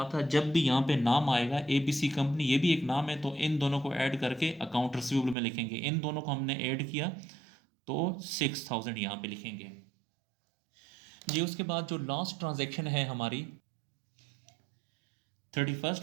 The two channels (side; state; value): left; drops out; at 5.4 s